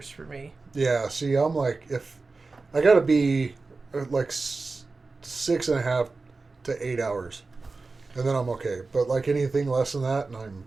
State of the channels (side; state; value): left; quieter; 3.8 dB